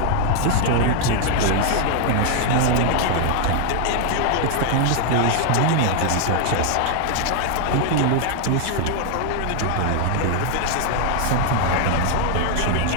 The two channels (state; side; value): different; both; correlation 0.00